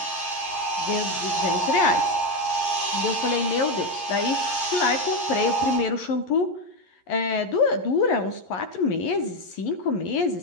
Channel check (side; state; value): right; late; 11 ms